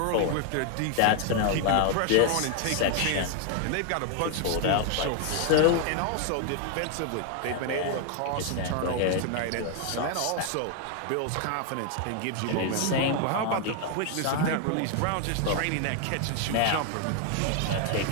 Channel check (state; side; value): different; both; correlation 0.00